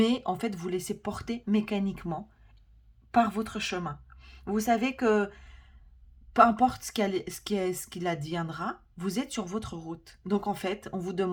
en fait, vous laissez porter mécaniquement par votre chemin. Vous savez que peu importe ce qu'il adviendra, vous êtes sur votre route. Donc, en fait, on vous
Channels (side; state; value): both; identical; correlation 1.00